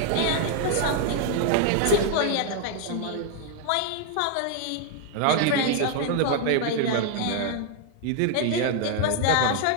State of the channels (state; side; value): different; both; correlation 0.00